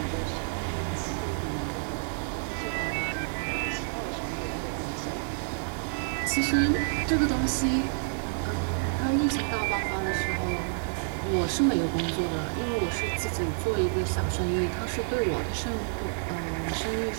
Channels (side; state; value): left; silent; digital silence